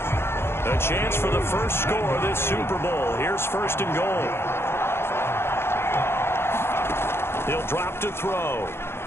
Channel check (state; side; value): late; right; 0.12 ms